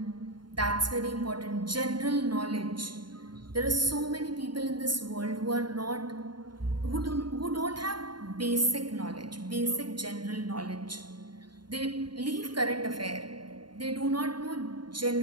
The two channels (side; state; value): left; late; 0.72 ms